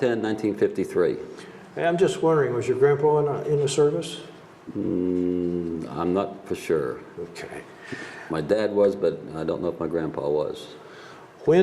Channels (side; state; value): both; identical; correlation 1.00